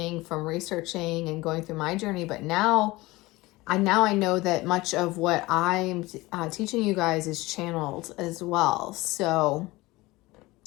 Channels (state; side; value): quieter; right; 20.6 dB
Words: from researching and going through my journey, but now I know that much of what I'm teaching you guys is channeled as well. So,